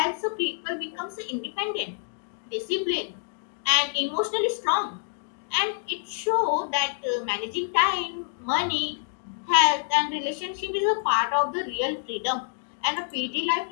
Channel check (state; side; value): silent; right; digital silence